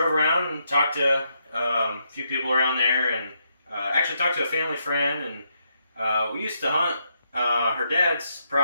around and talked to a few people around there, and actually talked to a family friend, and we used to hunt her dad's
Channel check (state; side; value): inverted; both; correlation -0.79